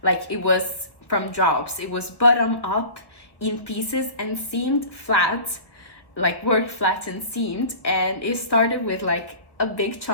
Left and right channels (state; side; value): late; right; 1.2 ms